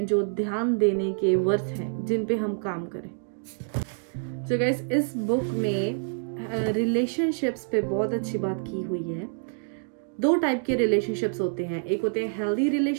जो ध्यान देने के वर्थ हैं, जिन पे हम काम करें। So guys, इस बुक में रिलेशनशिप्स पे बहुत अच्छी बात की हुई है। 2 टाइप के रिलेशनशिप्स होते हैं, एक होते हैं हेल्दी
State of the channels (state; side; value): silent; left; digital silence